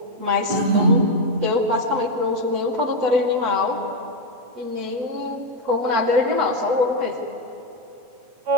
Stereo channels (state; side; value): late; left; 8.0 ms